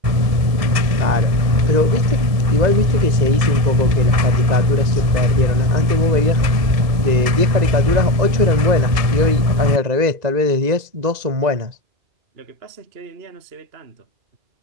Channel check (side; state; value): left; late; 1.7 ms